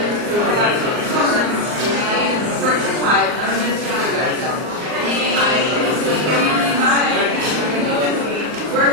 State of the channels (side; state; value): left; late; 39 ms